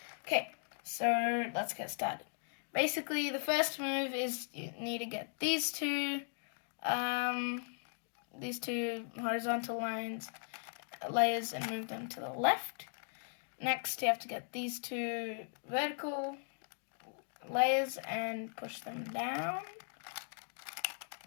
Okay, so let's get started. Basically, the first move is you need to get these two horizontal layers and move them to the left. Next, you have to get these 2 vertical layers and push them down,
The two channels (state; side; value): silent; right; digital silence